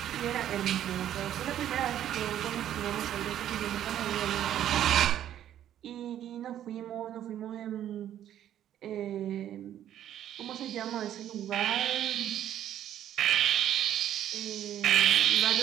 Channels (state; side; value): quieter; left; 11.2 dB